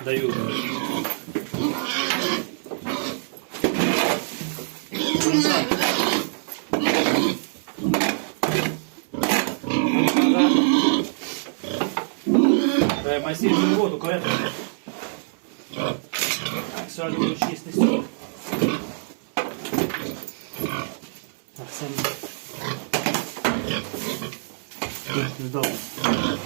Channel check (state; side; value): silent; left; 59 dB below the other